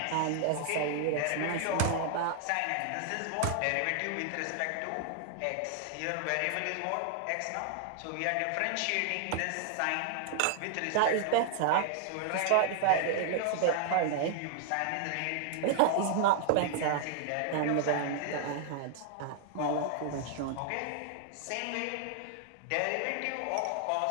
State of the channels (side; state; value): both; different; correlation 0.00